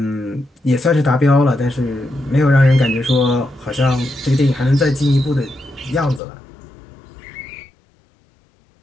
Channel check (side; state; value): right; drops out; at 6.2 s